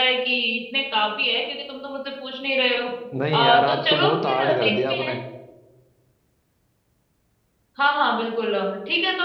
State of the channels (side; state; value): both; identical; correlation 1.00